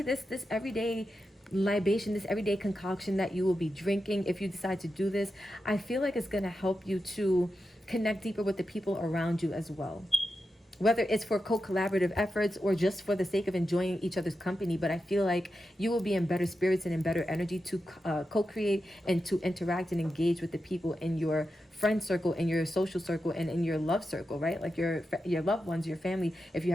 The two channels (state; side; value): normal; both; correlation 0.89